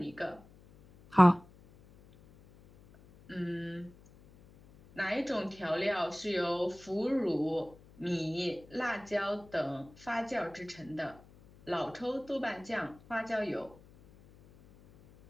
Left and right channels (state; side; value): noise; left; hum, 24 dB below the sound